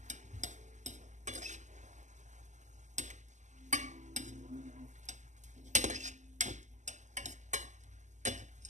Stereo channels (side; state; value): left; late; 0.34 ms